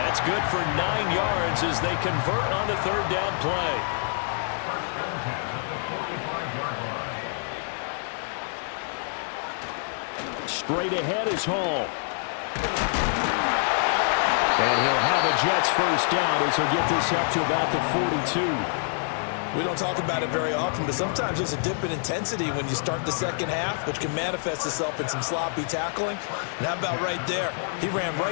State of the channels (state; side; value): silent; right; digital silence